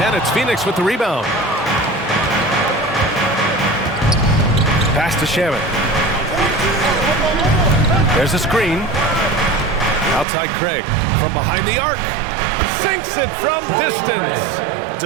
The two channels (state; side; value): drops out; left; at 10.2 s